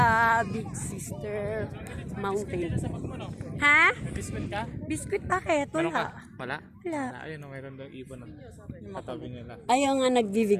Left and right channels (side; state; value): both; identical; correlation 1.00